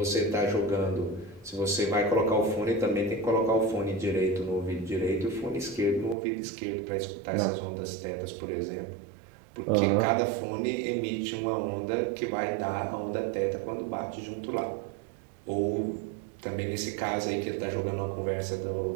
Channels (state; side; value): drops out; left; at 6.2 s